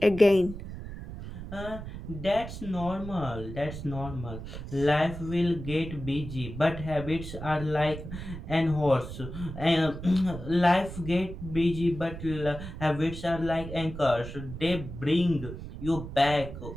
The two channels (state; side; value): noise; right; rumble, 10 dB below the sound